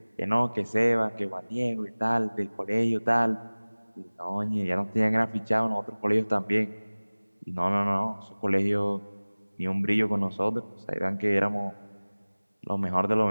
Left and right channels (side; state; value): both; inverted; correlation -1.00